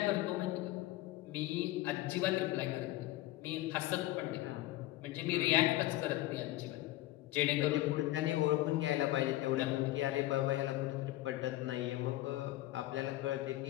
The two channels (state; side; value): quieter; right; 16.7 dB